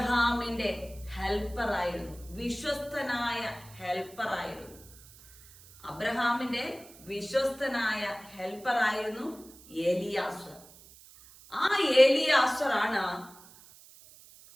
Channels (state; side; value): noise; right; hiss, 22 dB below the sound